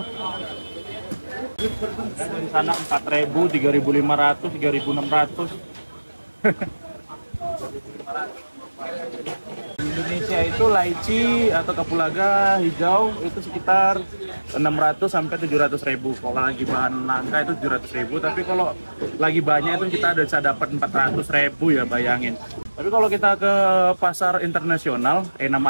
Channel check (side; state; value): both; inverted; correlation -1.00